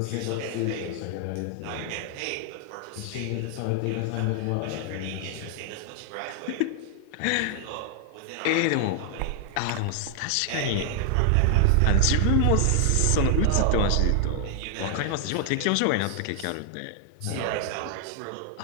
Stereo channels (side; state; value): both; different; correlation 0.00